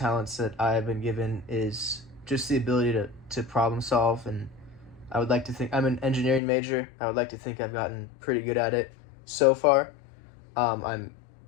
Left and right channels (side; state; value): right; drops out; at 6.4 s